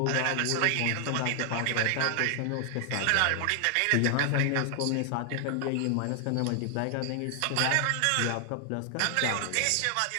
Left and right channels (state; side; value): different; both; correlation 0.00